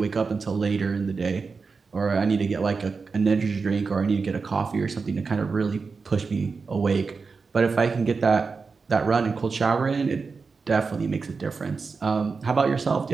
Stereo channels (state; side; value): quieter; left; 4.7 dB